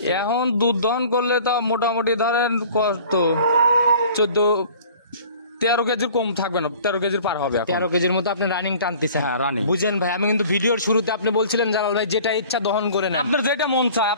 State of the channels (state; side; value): inverted; both; correlation -0.48